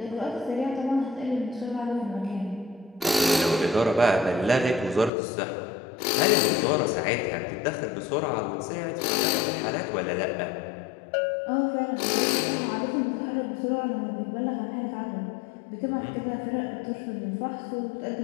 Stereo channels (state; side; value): drops out; right; at 5.1 s